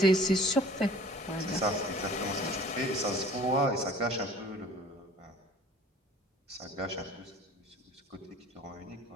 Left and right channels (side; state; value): both; normal; correlation 0.48